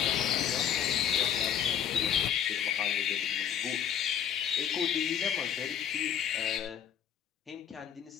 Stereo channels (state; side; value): quieter; right; 8.9 dB